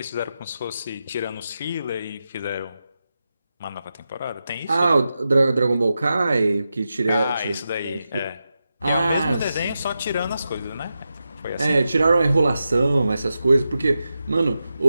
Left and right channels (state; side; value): inverted; both; correlation -0.90